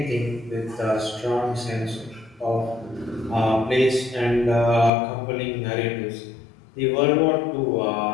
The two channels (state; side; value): drops out; right; at 4.9 s